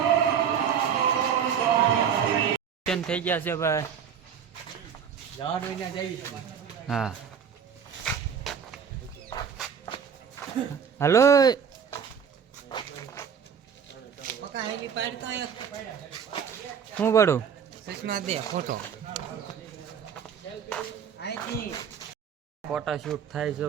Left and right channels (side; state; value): left; quieter; 7.5 dB